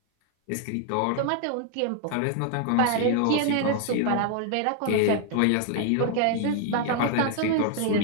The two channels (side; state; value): both; different; correlation 0.00